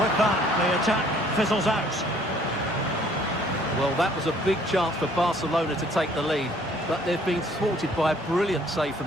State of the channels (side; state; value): both; normal; correlation 0.59